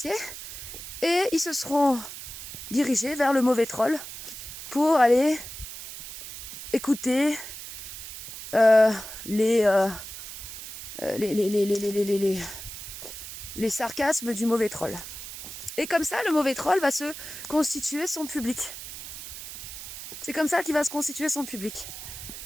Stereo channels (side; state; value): right; noise; hiss, 11 dB below the sound